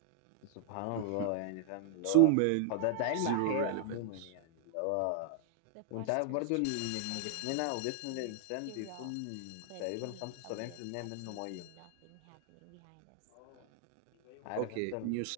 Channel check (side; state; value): both; different; correlation 0.00